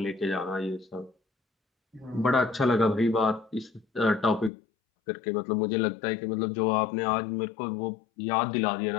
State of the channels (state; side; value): drops out; right; at 4.5 s